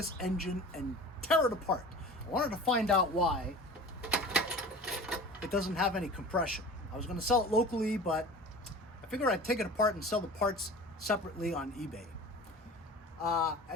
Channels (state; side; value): normal; both; correlation 0.39